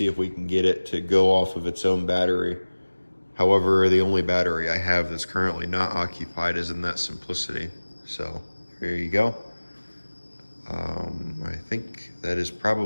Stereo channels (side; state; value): both; inverted; correlation -1.00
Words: if we can get it to go off of its own battery. However, the only battery I have that's currently not occupied is in that Simplicity. So here you go. I think that is